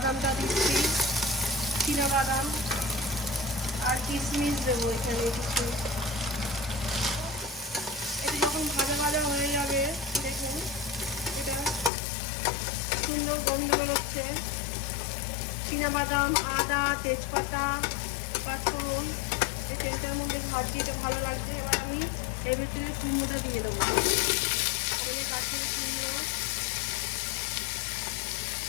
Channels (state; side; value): drops out; right; at 11.9 s